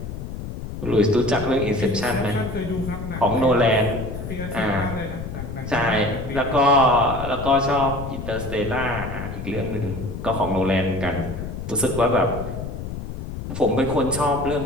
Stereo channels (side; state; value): left; noise; rumble, 7 dB below the sound